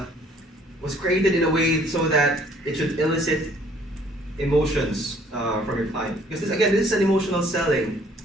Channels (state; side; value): normal; both; correlation 0.59